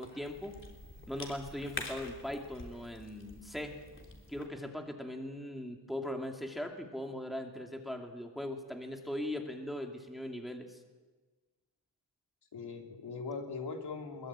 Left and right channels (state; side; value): normal; both; correlation 0.61